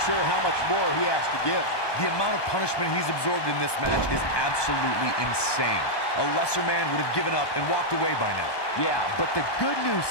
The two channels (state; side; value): late; right; 1.2 ms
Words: sure how much more he has to give. The amount of punishment he's absorbed in this match is absolutely insane. A lesser man would have given up and walked away by now. Yeah, but the good news